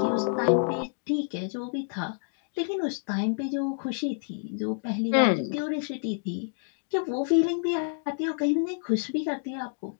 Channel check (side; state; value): right; silent; 58 dB below the other